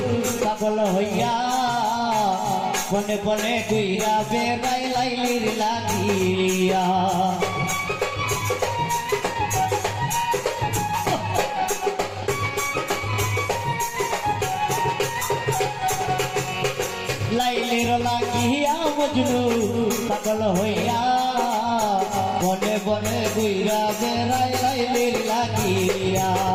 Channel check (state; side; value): identical; both; correlation 1.00